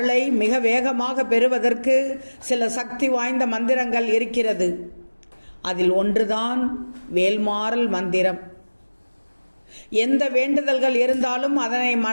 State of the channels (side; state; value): both; inverted; correlation -1.00